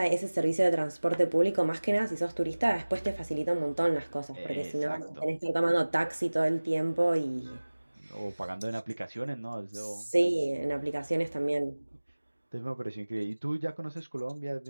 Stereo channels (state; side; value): inverted; both; correlation -1.00